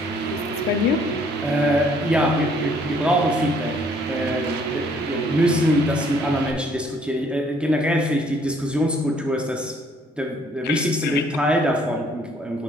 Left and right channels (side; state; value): both; normal; correlation 0.62